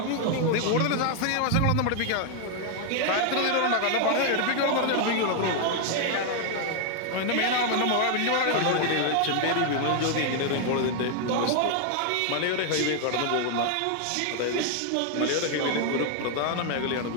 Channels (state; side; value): different; both; correlation 0.00